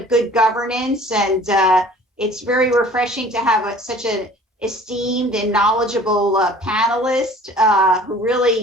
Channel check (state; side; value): normal; both; correlation 0.48